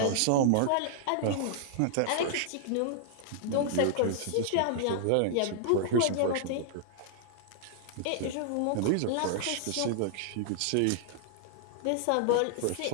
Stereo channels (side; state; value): both; different; correlation -0.01